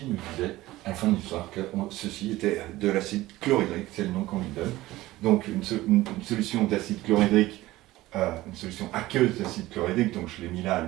nous disait à la fin de l'histoire que ceci était de l'acide chlorhydrique, c'est le nom qu'on lui donne. Donc une solution d'acide chlorhydrique, une solution aqueuse d'acide chlorhydrique, donc je l'ai mis là à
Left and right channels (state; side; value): quieter; left; 17.4 dB